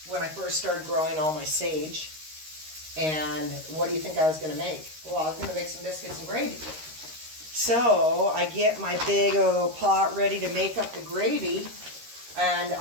when I first started growing all my sage. And what do you think I was going to make? Well, I was going to make some biscuits and gravy. So I get my big old pot ready to make up the gravy. And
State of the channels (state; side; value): late; left; 13 ms